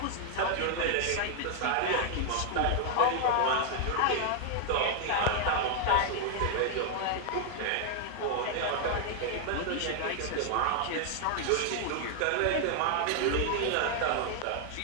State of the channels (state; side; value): different; both; correlation 0.00